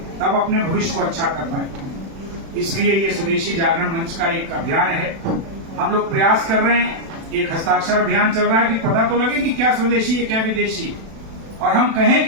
तब अपने भविष्य को अच्छा कर पाएंगे। इसलिए ये स्वदेशी जागरण मंच का एक अभियान है। हम लोग प्रयास कर रहे हैं, एक हस्ताक्षर अभियान चल रहा है कि पता तो लगे कि क्या स्वदेशी है क्या विदेशी है, और हम कहें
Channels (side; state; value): left; late; 36 ms